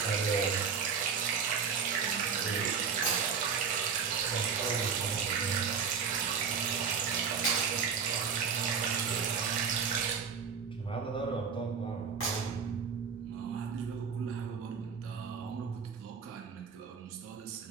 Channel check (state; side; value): quieter; left; 6.3 dB